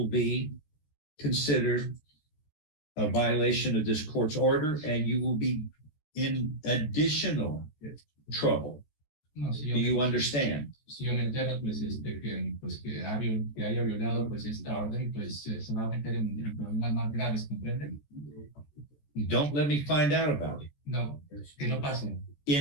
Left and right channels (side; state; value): right; late; 14 ms